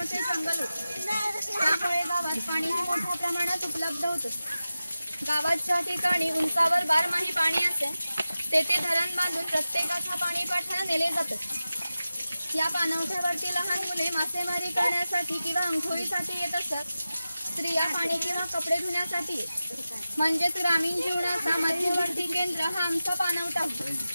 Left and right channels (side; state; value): both; inverted; correlation -0.94